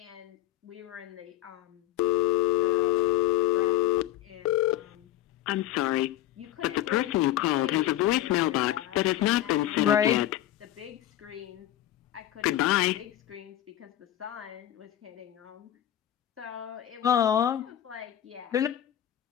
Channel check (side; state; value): right; quieter; 12.9 dB